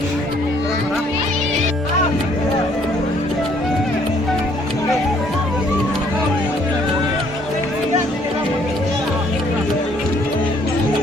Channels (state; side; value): normal; both; correlation 0.63